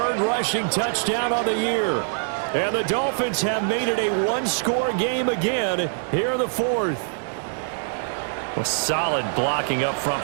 rushing touchdown on the year. And the Dolphins have made it a 1-score game again here in the 4th. Well, solid blocking up front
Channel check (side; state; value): left; silent; digital silence